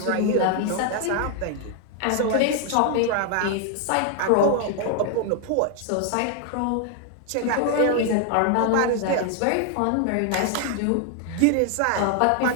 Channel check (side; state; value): both; different; correlation 0.00